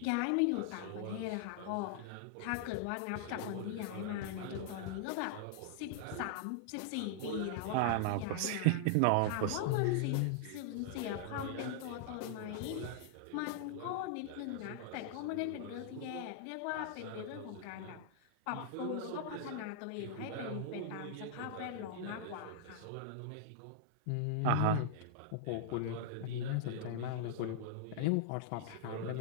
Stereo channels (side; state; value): both; different; correlation -0.01